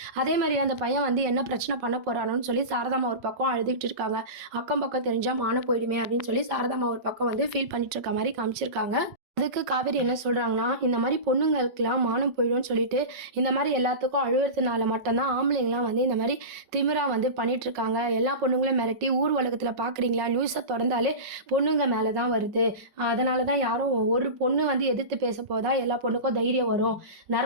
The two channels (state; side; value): late; left; 5.4 ms